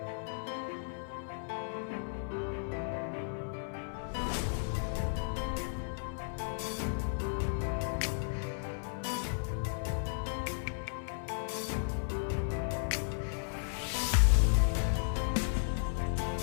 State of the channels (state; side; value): silent; right; 55 dB below the other